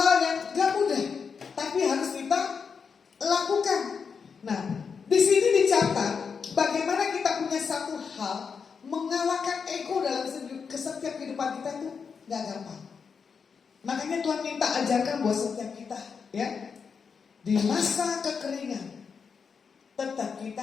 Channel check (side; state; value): right; quieter; 5.9 dB